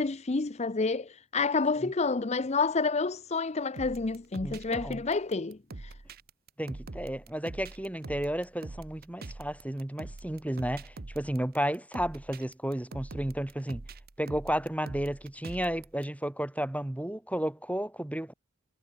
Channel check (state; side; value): normal; both; correlation 0.53